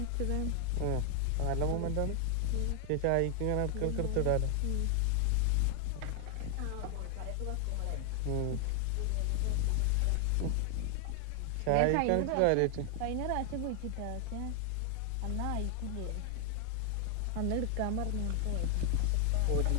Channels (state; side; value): different; both; correlation 0.00